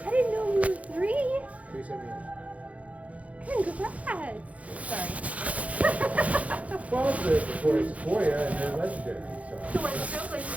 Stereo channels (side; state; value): left; late; 0.067 ms